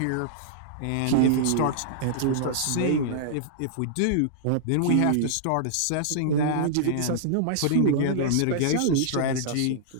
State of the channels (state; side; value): different; both; correlation -0.02